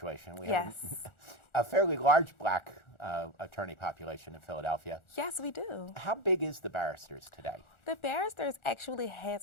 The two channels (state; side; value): late; right; 1.4 ms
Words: We have Yes. a fairly large black attorney population in Philadelphia. Yes, we do. How big is the barristers today? The Barristers actually